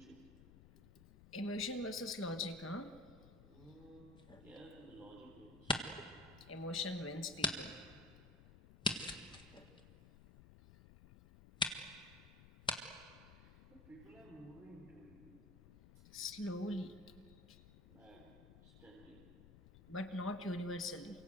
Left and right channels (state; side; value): noise; left; rumble, 18 dB below the sound